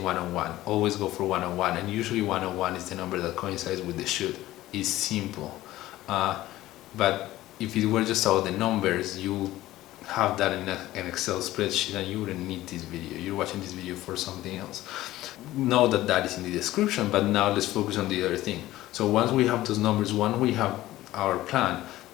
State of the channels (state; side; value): quieter; right; 15.9 dB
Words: 101. Always go for 101, and usually 101 is the number that coincides with the shoot. It's simple. But if it were just about the numbers, you have that in an Excel spreadsheet and you wouldn't need this video. You're watching this video for something else. Know that is in the description, but now let's focus on the other thing. So once we have those numbers, once we have our plan,